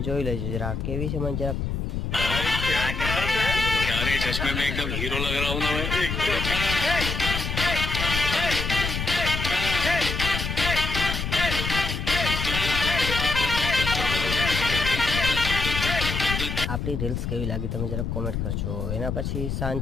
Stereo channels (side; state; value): left; noise; rumble, 3 dB below the sound